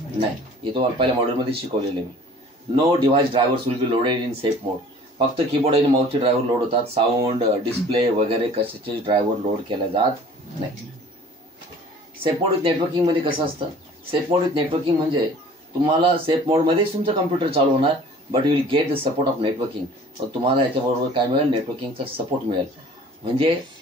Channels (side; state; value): both; normal; correlation 0.49